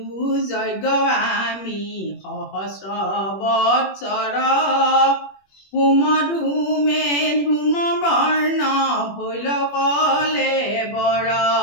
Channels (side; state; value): right; late; 21 ms